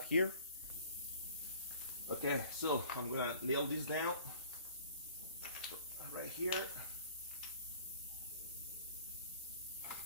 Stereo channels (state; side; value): inverted; both; correlation -0.50